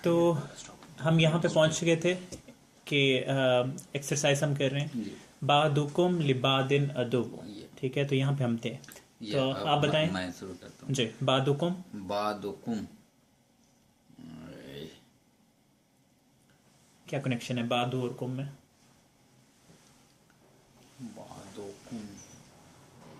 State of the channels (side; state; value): both; identical; correlation 1.00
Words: तो हम यहाँ पे पहुँच गए थे कि एक्सरसाइज हम कर रहे हैं बादुकुम लिबादिन अदुब, ठीक है। तो यहाँ पे हम थे, तो आप बताएं। मैं शुरू करता हूँ जी, बादुकुम। बादुकुम, क्या कनेक्शन है बादु और कुम में? बादुकुम